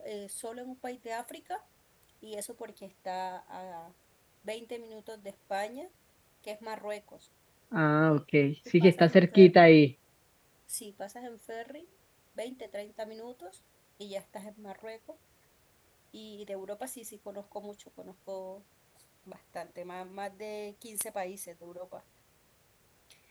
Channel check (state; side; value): identical; both; correlation 1.00